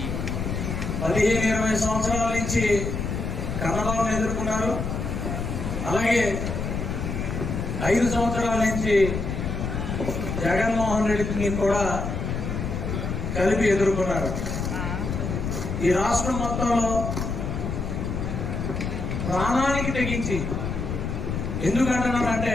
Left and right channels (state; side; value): noise; left; rumble, 3 dB below the sound